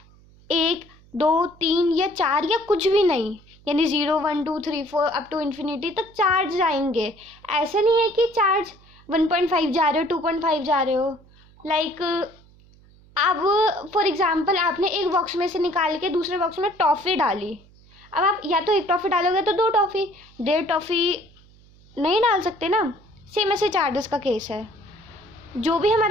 1 2 3 या 4 या कुछ भी नहीं, यानी 0 1 2 3 4 अप टू इन्फिनिटी तक चार्ज जाएंगे। ऐसा नहीं है कि चार्ज 1.5 जा रहे हो 2.5 जा रहे हो, लाइक अब फॉर एग्जांपल आपने एक बॉक्स में से निकाल के दूसरे बॉक्स में टॉफ़ी डाली। अब आप या तो एक टॉफ़ी डालोगे तो 2 टॉफ़ी, 1.5 टॉफ़ी नहीं डाल सकते ना। सेम ऐसे चार्जेस का केस है। जो भी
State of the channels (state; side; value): noise; right; hum, 27 dB below the sound